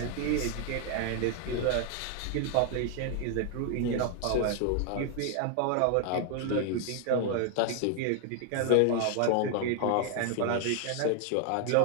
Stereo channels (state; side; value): different; both; correlation 0.00